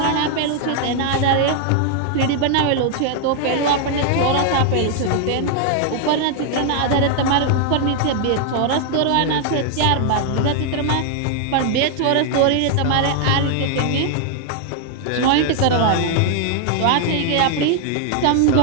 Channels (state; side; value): different; both; correlation 0.00